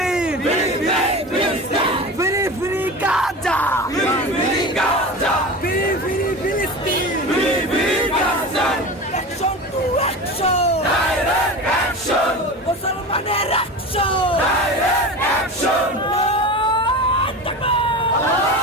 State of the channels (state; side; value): normal; both; correlation 0.29